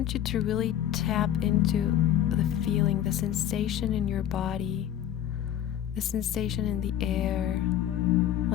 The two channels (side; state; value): right; quieter; 11.0 dB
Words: you to really tap into the feeling, the sensation in your body, the sensation in the air,